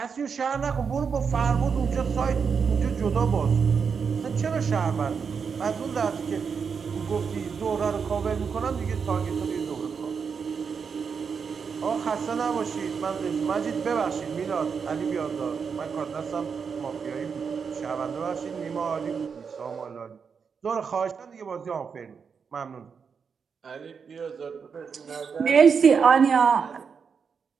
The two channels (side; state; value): left; quieter; 6.1 dB